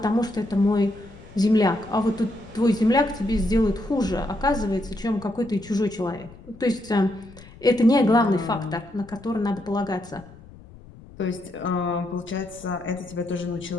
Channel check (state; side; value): noise; left; rumble, 20 dB below the sound